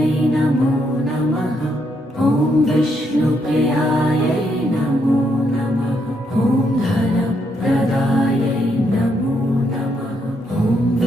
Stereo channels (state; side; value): normal; both; correlation 0.76